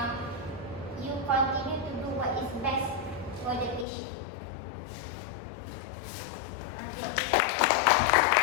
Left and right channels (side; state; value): right; drops out; at 3.9 s